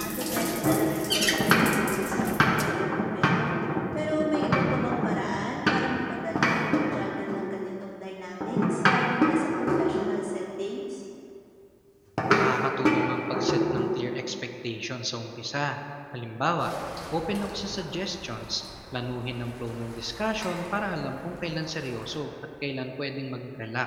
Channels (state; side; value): identical; both; correlation 1.00